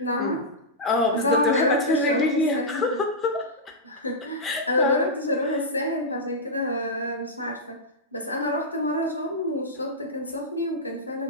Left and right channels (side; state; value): both; normal; correlation -0.10